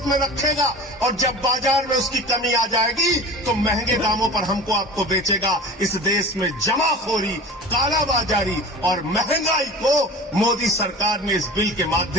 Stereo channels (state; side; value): normal; both; correlation 0.36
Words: में रखेगा और जब बाजार में उसकी कमी आ जाएगी तो महंगे दामों पर हमको आपको बेचेगा। इस देश में जमाखोरी, कालाबाजारी और महंगाई को मोदी सरकार ने इस बिल के